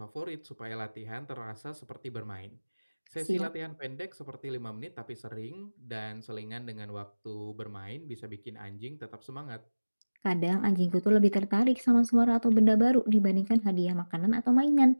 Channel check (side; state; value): both; inverted; correlation -1.00